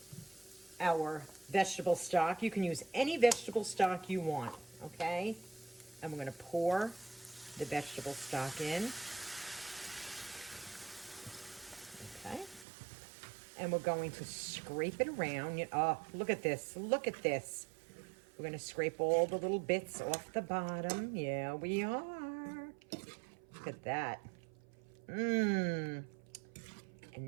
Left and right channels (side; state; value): left; drops out; at 12.7 s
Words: our vegetable stock. You can use any vegetable stock you want, okay? And we're going to pour the vegetable stock in. Okay. And we're going to scrape it around. Oh, look at this. Look at this. We're going to scrape all the little bits off the bottom. Yeah, we are. Look at that. And